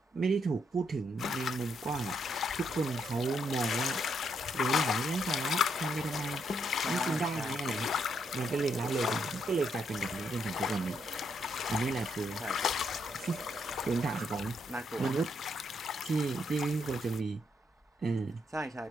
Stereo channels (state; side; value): normal; both; correlation 0.76